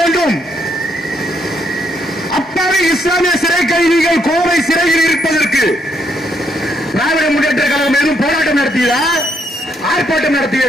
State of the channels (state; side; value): normal; both; correlation 0.74